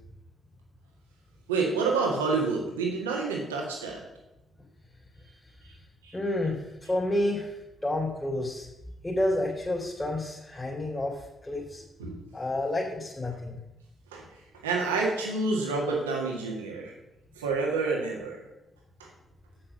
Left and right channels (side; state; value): both; normal; correlation 0.61